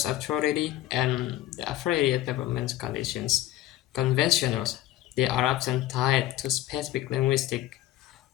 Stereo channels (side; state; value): right; quieter; 14.1 dB